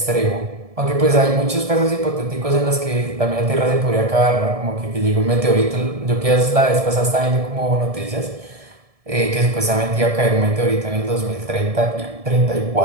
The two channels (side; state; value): left; late; 1.7 ms